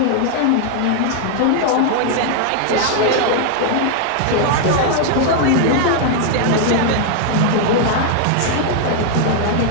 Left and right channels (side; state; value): both; different; correlation 0.00